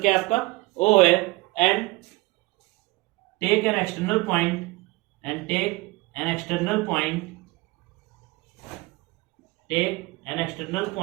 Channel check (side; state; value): left; quieter; 22.8 dB